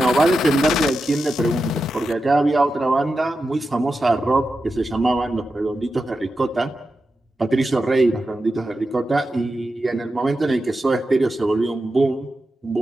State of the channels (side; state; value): both; normal; correlation 0.90